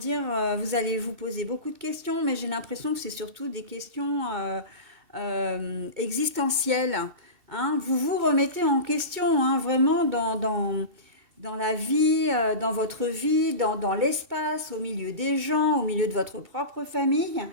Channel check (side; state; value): left; late; 2.7 ms